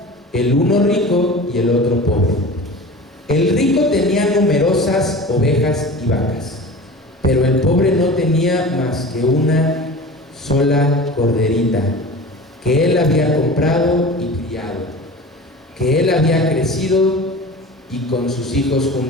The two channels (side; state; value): both; normal; correlation 0.36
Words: el uno rico y el otro pobre. El rico tenía numerosas ovejas y vacas, pero el pobre no tenía más que una sola corderita, que él había comprado y criado, que él había crecido y con sus hijos